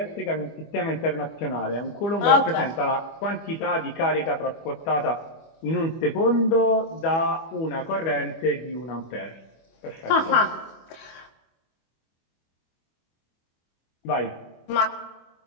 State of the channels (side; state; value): right; late; 25 ms